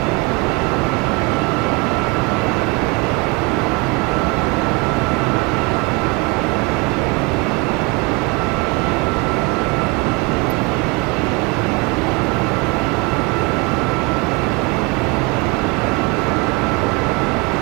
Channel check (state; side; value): quieter; left; 26.4 dB